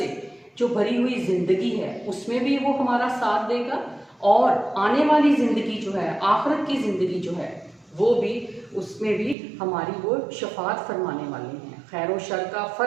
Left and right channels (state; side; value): drops out; left; at 9.3 s